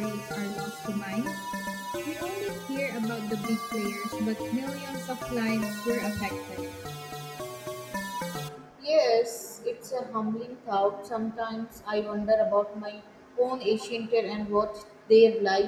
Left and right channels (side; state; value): both; identical; correlation 1.00